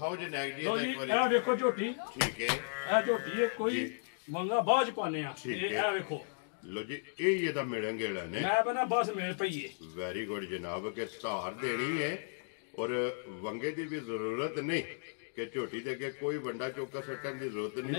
ਜੀ ਨੈਕ ਦੀ ਲੋ ਜੀ ਇੱਕ ਵਾਰੀ ਇਹ ਵੇਖੋ ਝੋਟੀ ਠੀਕ ਹੈ ਇਹ ਝੋਟੀ ਹੈ ਕੋਈ ਮੰਗਾ ਬਾਜ ਪਾਣੇ ਆ ਠੀਕ ਇਹ ਹੈ। ਇਹ ਵੇਖੋ ਲੋ ਜੀ ਇਹ ਇਹਦਾ ਮਿਲਣ ਗਿਲਣ ਨੇ ਮੈਂ ਬਣਾ ਬਸ ਮੇਰੇ ਪਈਏ ਵੈਰੀ ਗੁੱਡ ਜਨਾਬ ਕਿ ਸਹਾਰ ਦੇਣੀ ਹੈ ਔਰ ਵੰਗੇ ਦੀ ਵੀ ਜ਼ਰੂਰਤ ਨਹੀਂ ਕਿ ਝੋਟੀ ਦੇ ਅੱਗੇ ਕੋਈ ਵੰਡਾ ਚੌਕਾ ਸੱਟਣ ਦੀ ਜ਼ਰੂਰਤ ਨਹੀਂ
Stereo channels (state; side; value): silent; right; digital silence